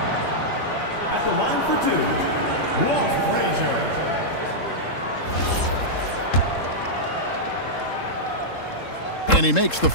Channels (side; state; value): right; late; 3.7 ms